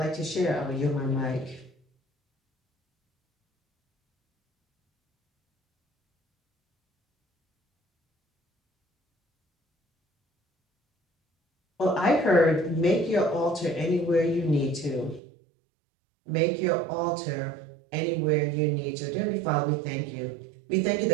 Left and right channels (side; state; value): left; drops out; at 15.2 s